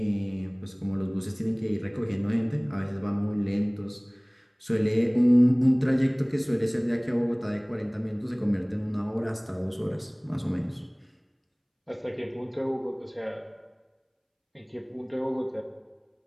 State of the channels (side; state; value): both; identical; correlation 1.00